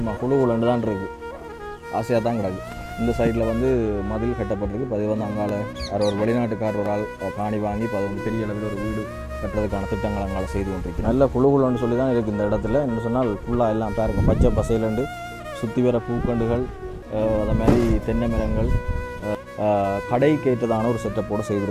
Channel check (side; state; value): both; identical; correlation 1.00